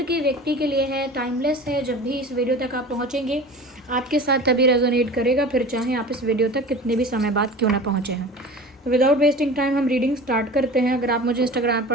के व्यक्ति के लिए है, टाइमलेस है। जब भी इस वीडियो तक आप पहुँचेंगे आपके साथ तभी रेजोनेट करेगा, फिर चाहे आप इस वीडियो तक कितने भी समय बाद क्यों ना पहुँचे हैं। तो विदाउट वेस्टिंग टाइम हम रीडिंग स्टार्ट करते हैं। अगर आप मुझे इंस्टाग्राम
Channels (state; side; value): normal; both; correlation 0.37